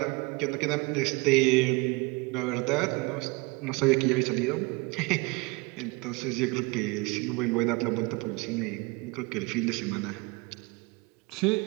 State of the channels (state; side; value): quieter; left; 25.9 dB